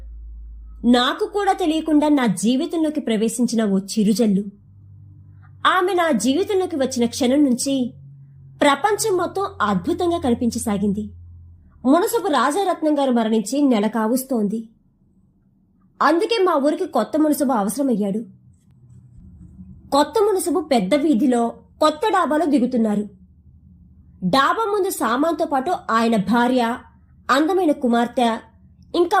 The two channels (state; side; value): identical; both; correlation 1.00